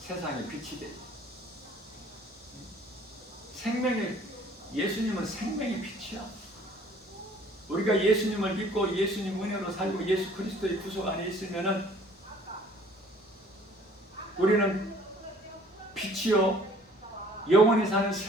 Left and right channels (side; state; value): both; normal; correlation 0.54